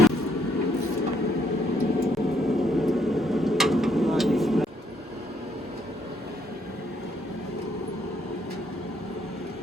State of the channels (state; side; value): normal; both; correlation 0.70